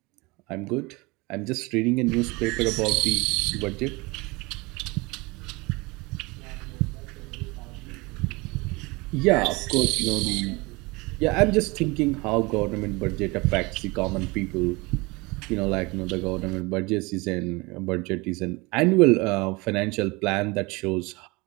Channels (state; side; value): quieter; left; 24.9 dB